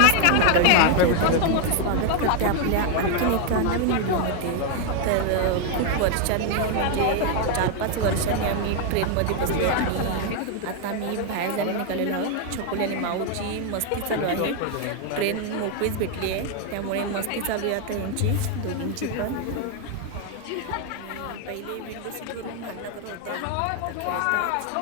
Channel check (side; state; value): both; different; correlation 0.00